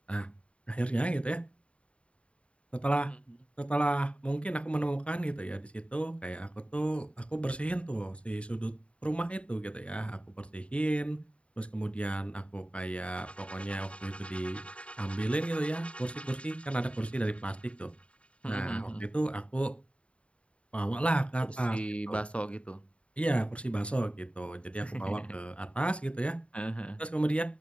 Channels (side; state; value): right; late; 0.061 ms